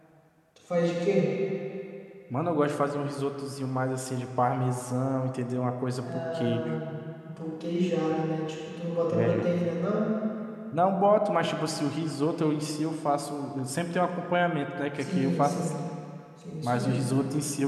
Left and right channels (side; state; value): both; identical; correlation 1.00